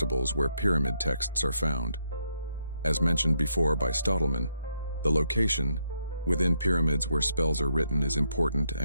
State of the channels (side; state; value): both; inverted; correlation -0.78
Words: where pyramid texts are found. As mentioned before by Stottleman, the location within pyramids where spells are written is important